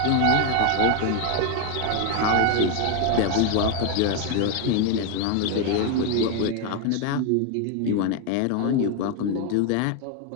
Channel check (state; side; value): different; both; correlation 0.01